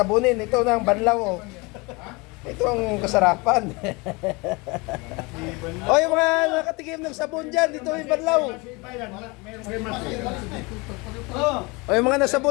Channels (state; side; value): quieter; right; 26.6 dB